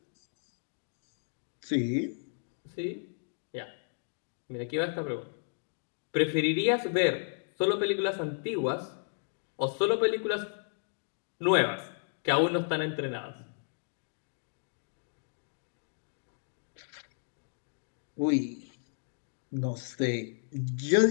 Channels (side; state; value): right; silent; digital silence